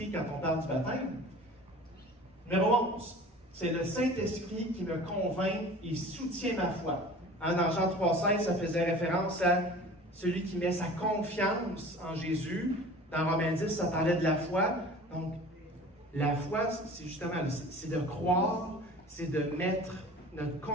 quand on parle du baptême. Numéro 11, c'est le Saint-Esprit qui me convainc et soutient ma foi. Hein, dans Jean 3,16, ça faisait référence à celui qui met sa confiance en Jésus. Dans Romains 10, ça parlait de la foi. Donc, la foi, c'est justement, c'est de croire, c'est de mettre notre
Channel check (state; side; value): normal; both; correlation 0.42